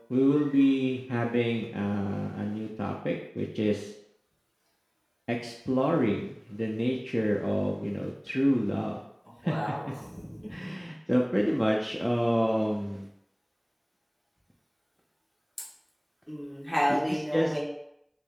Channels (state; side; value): identical; both; correlation 1.00